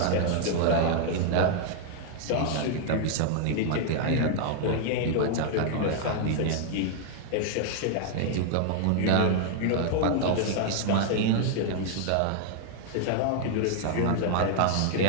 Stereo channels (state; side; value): different; both; correlation 0.00